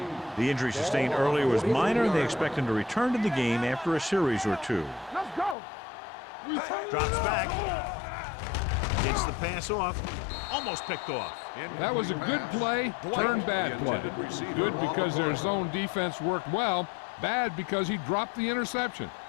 3. The injury sustained earlier was minor, and they expect him to return to the game after a series or two. Let's go. Drops back. Gets the pass off. Almost picked off. That was a good play, turned bad play. Good because their zone defense worked well, bad because he dropped the interception.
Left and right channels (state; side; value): drops out; right; at 5.6 s